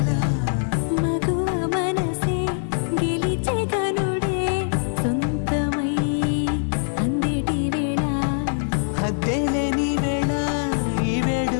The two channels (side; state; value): right; silent; digital silence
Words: మగువ మనసే గెలిచే కనుడే సొంతమై అందేటి వేళ హద్దేలేని వేళ ఈ